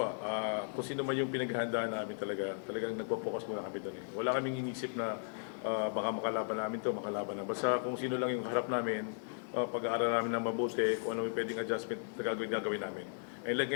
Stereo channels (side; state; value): right; silent; digital silence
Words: kung sino man yung pinaghahandaan namin talagang nagpo-focus muna kami doon. Wala kaming inisip na baka makalaban namin to, makalaban na. Basta kung sino lang yung harap namin, pag-aaral namin na mabuti, kung ano yung pwedeng adjustment na gagawin namin. And like